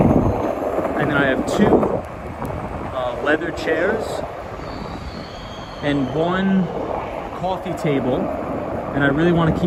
And then I have two leather chairs and one coffee table. And I really want to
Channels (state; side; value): identical; both; correlation 1.00